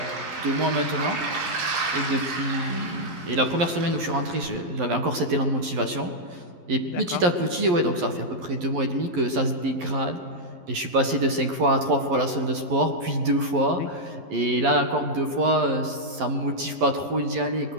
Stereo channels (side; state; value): left; late; 11 ms